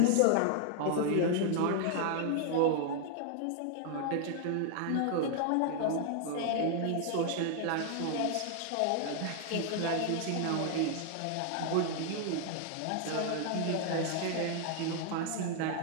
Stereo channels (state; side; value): different; both; correlation 0.00